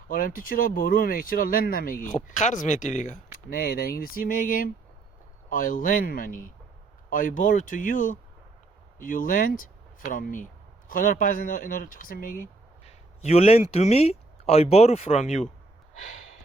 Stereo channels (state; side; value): quieter; left; 3.3 dB